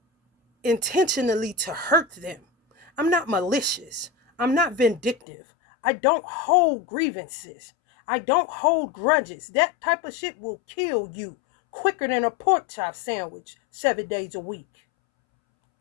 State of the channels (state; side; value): drops out; right; at 5.2 s